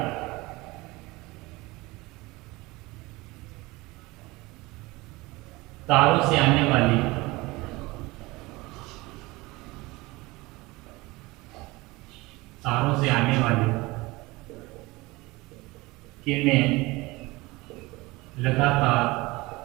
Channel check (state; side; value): quieter; left; 22.1 dB